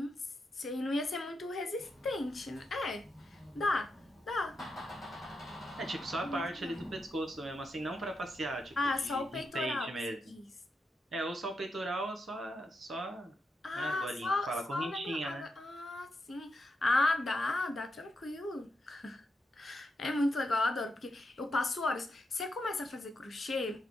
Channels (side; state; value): both; normal; correlation 0.84